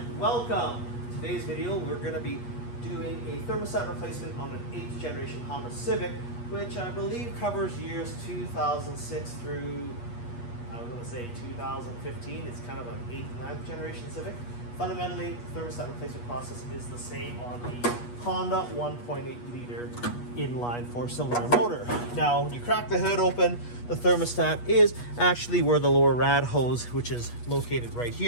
welcome. Today's video, we're going to be doing a thermostat replacement on an 8th generation Honda Civic, which I believe covers years 2006 through, I was going to say 2015. It's kind of an 8th and 9th generation Civic. Fundamentally, the thermostat replacement process is the same on the Honda 1.8 liter inline 4-cylinder motor. Now, when you crack the hood open, the thermostat is actually where the lower rad hose, which is located right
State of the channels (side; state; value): right; late; 8.3 ms